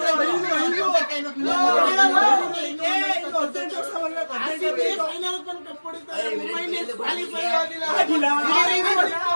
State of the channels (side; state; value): both; inverted; correlation -1.00